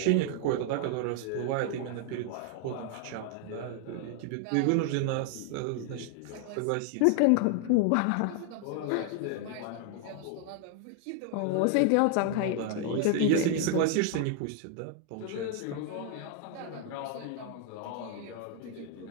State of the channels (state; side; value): different; both; correlation 0.00